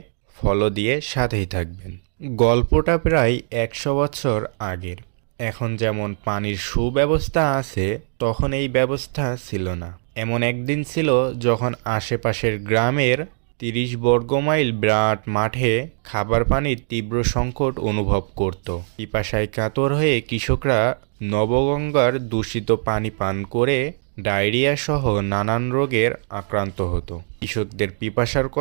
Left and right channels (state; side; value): silent; left; digital silence